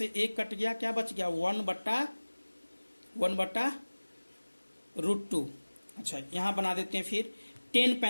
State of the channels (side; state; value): both; inverted; correlation -1.00